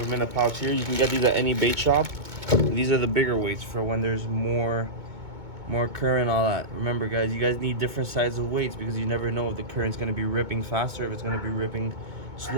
them in a pouch here. You can get these at any bait shop. These are the bigger weights for when there's more current, all that. Remember guys, you guys need different sizes of weights, because you never know if the current's going to be ripping faster, if it's going to be ripping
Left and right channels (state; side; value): late; left; 2.2 ms